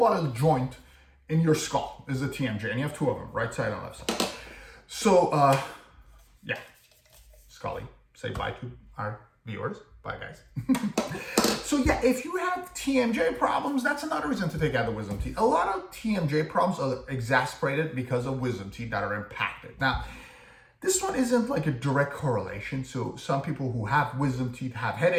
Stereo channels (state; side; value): identical; both; correlation 1.00